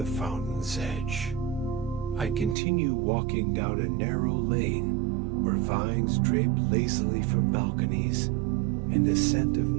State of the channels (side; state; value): left; drops out; at 2.6 s